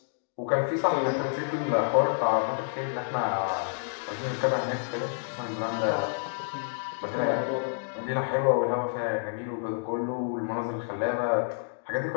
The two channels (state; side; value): silent; right; digital silence